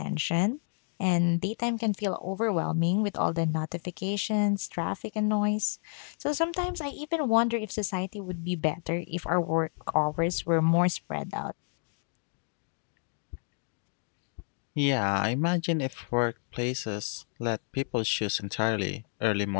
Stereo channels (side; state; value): right; silent; 58 dB below the other